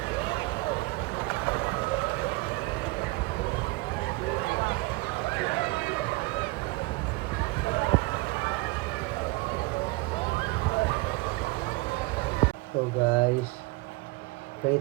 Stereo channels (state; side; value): quieter; left; 22.8 dB